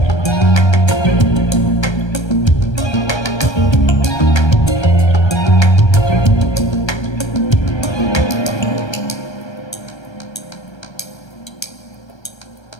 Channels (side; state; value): right; late; 1.3 ms